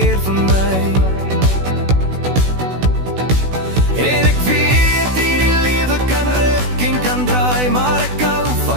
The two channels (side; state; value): left; late; 16 ms